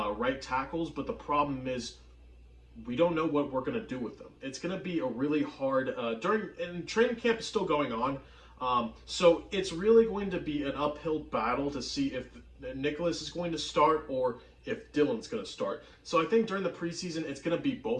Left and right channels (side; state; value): both; identical; correlation 1.00